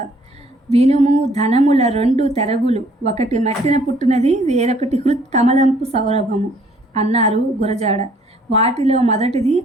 వినుము ధనముల రెండు తెరగులు, ఒకటి మట్టిన పుట్టినది, వేరొకటి హృత్ కమలంపు సౌరభము అన్నారు గురజాడ. వాటిలో మొదటిది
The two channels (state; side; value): normal; both; correlation 0.61